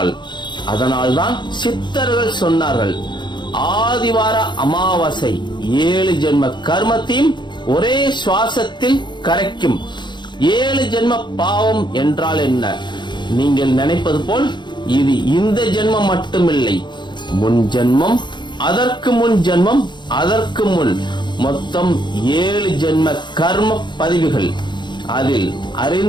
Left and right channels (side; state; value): right; late; 0.22 ms